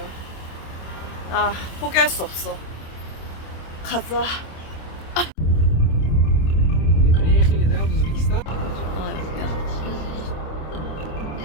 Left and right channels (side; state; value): right; late; 26 ms